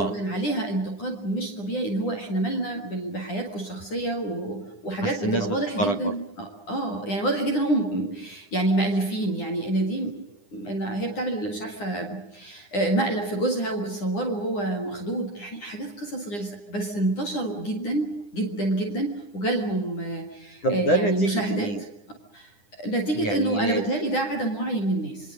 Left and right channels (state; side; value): late; right; 9.9 ms